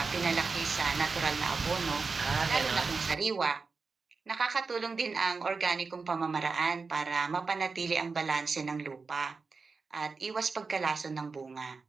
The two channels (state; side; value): quieter; left; 4.5 dB